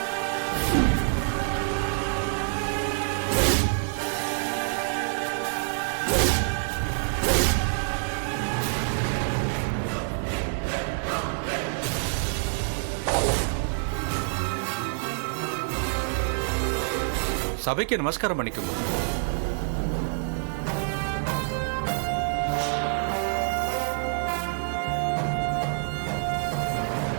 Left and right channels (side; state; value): left; silent; 60 dB below the other